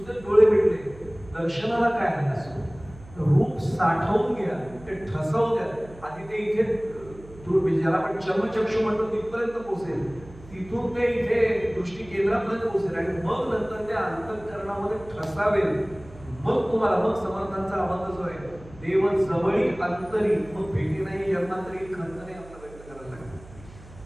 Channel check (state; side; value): noise; right; hum, 20 dB below the sound